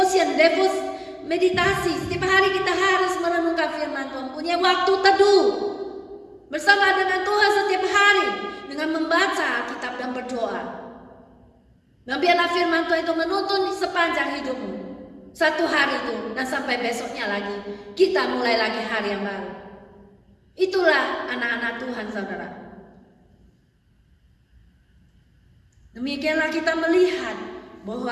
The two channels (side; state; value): both; identical; correlation 1.00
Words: meditasi. Setiap hari kita harus merenungkan firman Tuhan, punya waktu teduh bersama dengan Tuhan setiap hari dengan membaca Alkitab dan berdoa. Dan biarlah firman Tuhan itu menuntun sepanjang hidupmu, satu hari itu, dan sampai besoknya lagi kita mulai lagi hari yang baru. Itulah anak-anak Tuhan, saudara. Demikianlah kita melihat